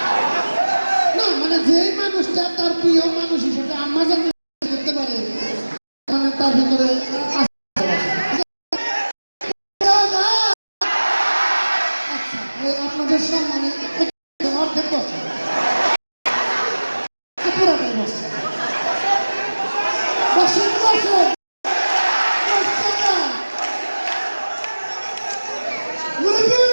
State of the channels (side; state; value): both; inverted; correlation -1.00